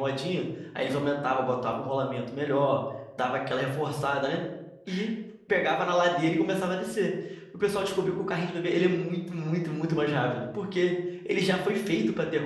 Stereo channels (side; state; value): both; identical; correlation 1.00